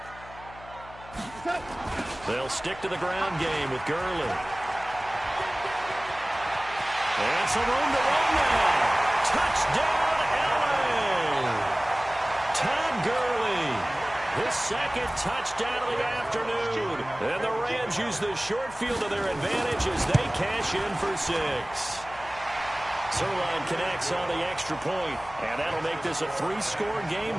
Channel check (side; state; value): left; noise; hum, 19 dB below the sound